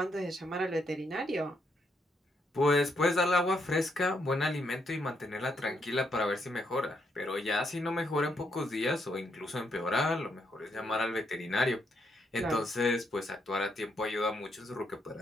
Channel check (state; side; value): normal; both; correlation 0.77